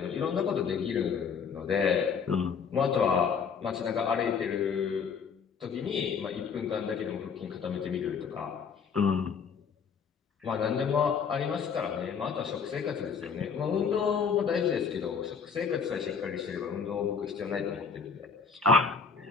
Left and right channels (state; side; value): quieter; right; 6.1 dB